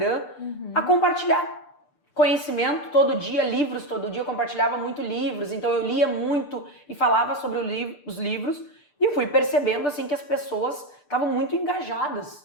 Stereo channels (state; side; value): late; right; 6.7 ms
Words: a compartilhar conhecimento todo dia, livros todo dia, eu compartilhava muito livros, então eu lia muito e falava sobre os livros e fui percebendo assim que as pessoas estavam muito engajadas,